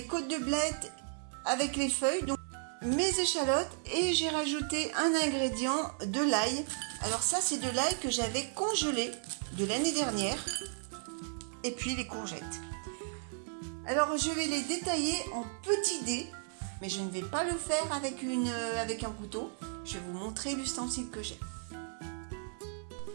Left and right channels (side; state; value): left; silent; 55 dB below the other